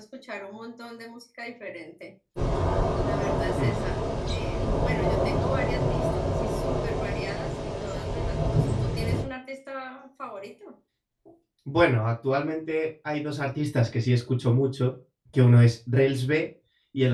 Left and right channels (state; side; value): identical; both; correlation 1.00